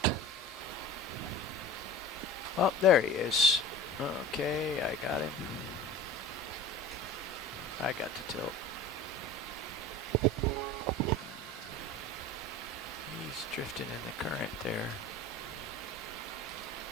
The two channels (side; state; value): both; normal; correlation 0.37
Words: Oh, there he is. Okay, I got him. I got to tilt. He's drifting in the current there.